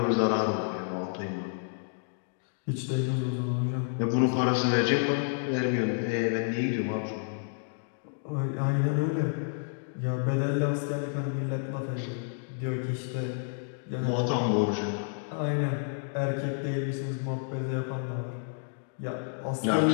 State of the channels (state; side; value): silent; right; digital silence